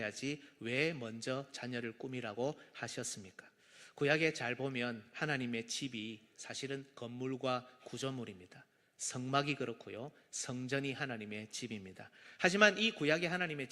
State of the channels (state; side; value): identical; both; correlation 1.00